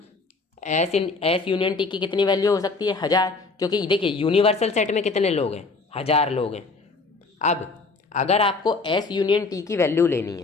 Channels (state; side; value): quieter; right; 4.0 dB